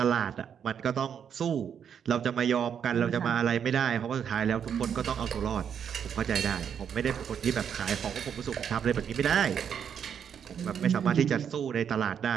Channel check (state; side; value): quieter; left; 8.0 dB